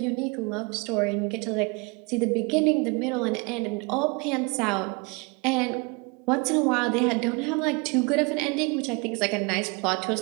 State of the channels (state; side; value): quieter; left; 29.3 dB